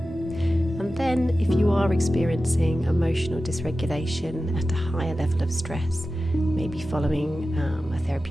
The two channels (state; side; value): normal; both; correlation 0.94